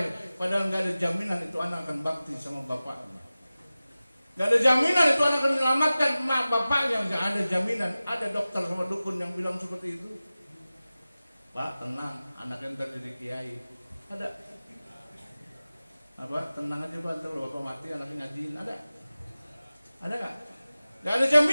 Padahal gak ada jaminan itu anak akan bakti sama bapaknya. Gak ada jaminan itu anak akan menyelamatkan mak bapaknya. Gak ada jaminan. Ada dokter sama dukun yang bilang seperti itu. Pak tenang, anaknya ntar jadi kiai. Ada. Apa? Tenang aja Pak, ntar bapak mati anaknya ngajiin. Ada gak? Gak ada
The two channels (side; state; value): both; inverted; correlation -0.97